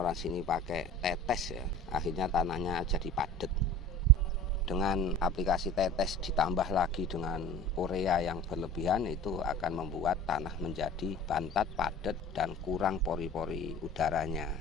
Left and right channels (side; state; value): both; normal; correlation 0.41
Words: sini pakai tetes ya, akhirnya tanahnya jadi padat. Dengan aplikasi tetes ditambah lagi dengan urea yang berlebihan, itu akan membuat tanah menjadi bantat, padat, dan kurang pori-pori udaranya.